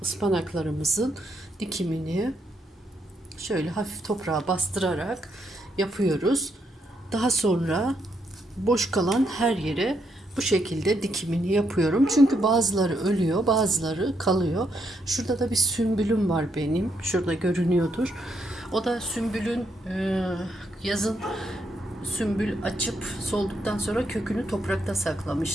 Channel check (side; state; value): both; normal; correlation 0.77